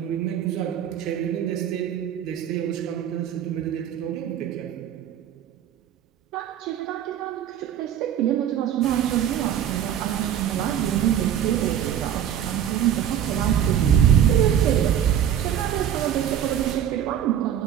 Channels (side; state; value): left; quieter; 9.9 dB